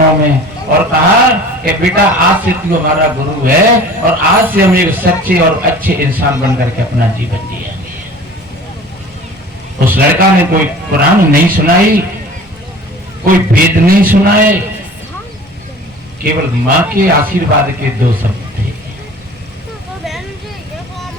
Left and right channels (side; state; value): both; normal; correlation 0.43